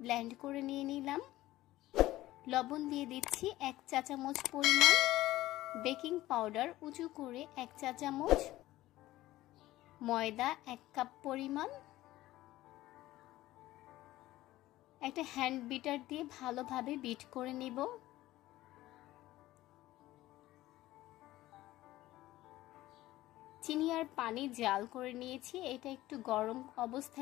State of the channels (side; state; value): right; quieter; 16.2 dB